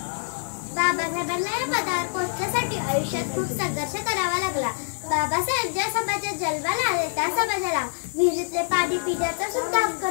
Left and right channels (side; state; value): right; silent; digital silence